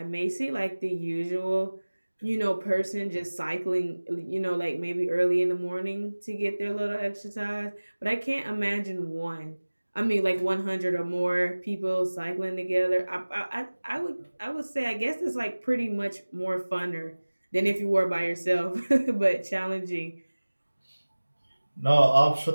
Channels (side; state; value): both; inverted; correlation -1.00